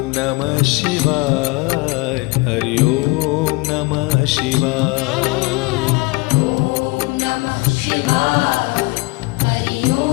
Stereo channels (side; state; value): right; quieter; 24.8 dB